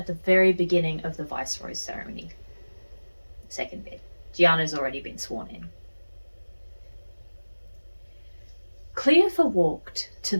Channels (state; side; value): inverted; both; correlation -1.00